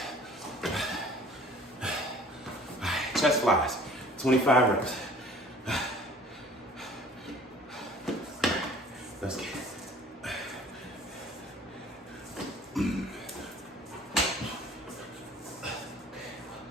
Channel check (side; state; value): both; normal; correlation 0.50